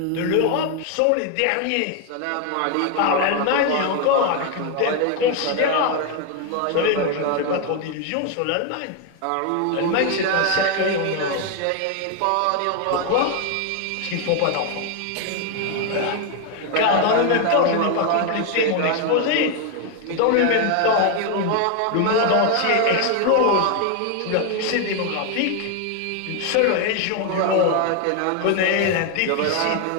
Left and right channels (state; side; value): different; both; correlation 0.01